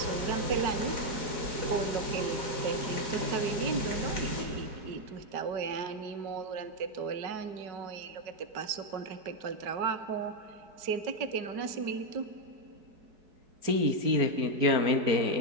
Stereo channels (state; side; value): late; left; 4.7 ms